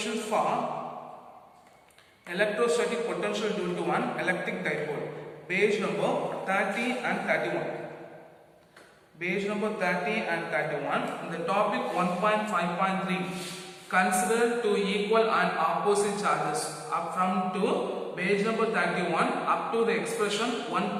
for electrostatic potential due to an electric dipole. Page number 30 and 31. Page number 30 and 31. The topic 1.5.3. Consider two equal and opposite charges. Up from to page number 31 up to the expression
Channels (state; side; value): identical; both; correlation 1.00